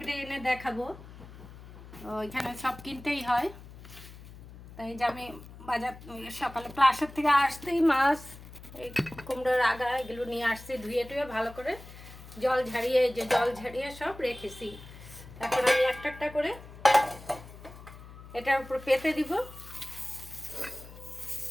এনে দেখাবো, ওইখানে সব কিনতেই হয়। তাই যে আমি বাজার সকালে ক্লাসের থেকে আসতেই মাছ, এই কুমড়োর আগা এগুলো নিয়ে আসছি, ধুয়ে টুয়ে ভালো করে জল ঝাড়িয়ে সব রেখেছি। এখন আমি একটা একটা করে এটার উপর পেতে দিব।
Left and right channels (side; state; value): left; noise; hum, 17 dB below the sound